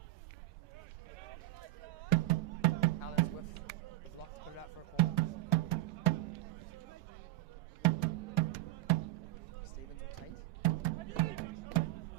Alice with the block to put it out for a corner. Stevens will take.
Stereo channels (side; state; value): left; quieter; 17.2 dB